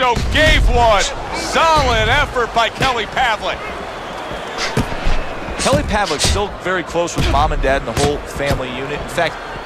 gave one. Solid effort by Kelly Pavlik. Kelly Pavlik's still very close with mom and dad and the whole family unit. In fact,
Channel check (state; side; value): identical; both; correlation 1.00